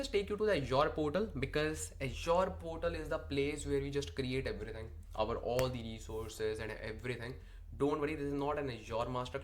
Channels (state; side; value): identical; both; correlation 1.00